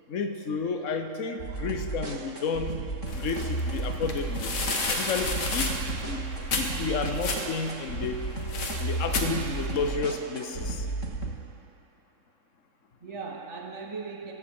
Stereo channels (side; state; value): right; late; 3.7 ms